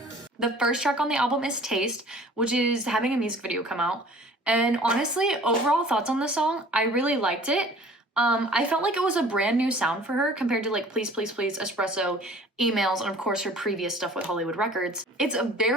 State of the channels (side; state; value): both; normal; correlation 0.49